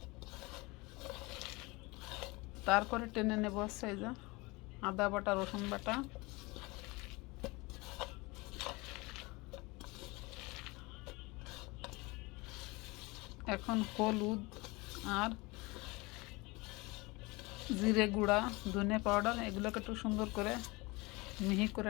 তারপরে টেনে নেব হচ্ছে এই যে আদা বাটা, রসুন বাটা। এখন হলুদ আর জিরে গুঁড়া, ধনে পাউডার, এগুলোকে একটু সুন্দর করে মিহি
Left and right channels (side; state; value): right; quieter; 24.3 dB